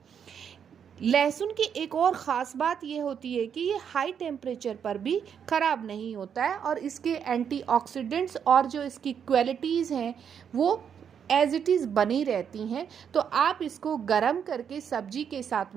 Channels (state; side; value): quieter; left; 7.8 dB